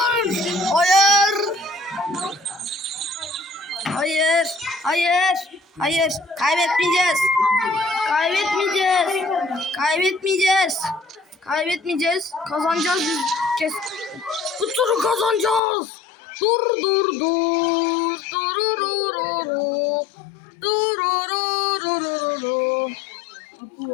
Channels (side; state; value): right; drops out; at 15.6 s